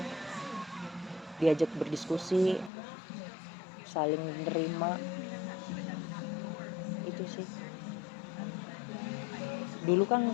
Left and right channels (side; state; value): right; drops out; at 2.7 s